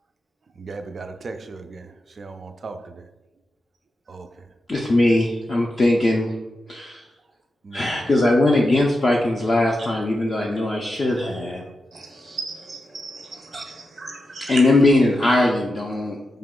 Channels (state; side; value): normal; both; correlation 0.89